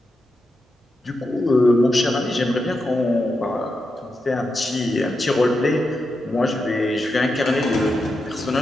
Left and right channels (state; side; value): normal; both; correlation 0.87